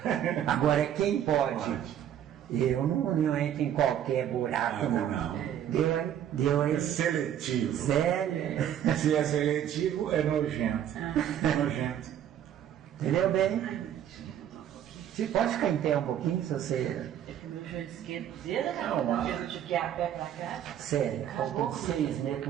Agora, quem pode? Eu não entro em qualquer buraco, não. Deu aí? É seletivo. Sério? Se é seletivo, é nojento. Nojento. Entendeu bem? Você pode ficar em pé um pouquinho, se você... É que o meu joelho esquerdo dele, porque eu tive que ir a pé pra cá. Sério, faltam 6 meses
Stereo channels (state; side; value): quieter; left; 10.3 dB